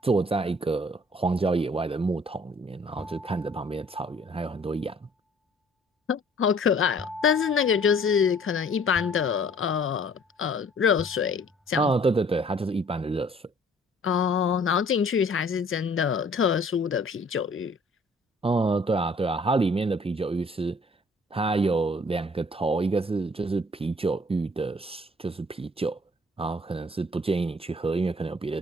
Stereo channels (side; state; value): both; normal; correlation 0.56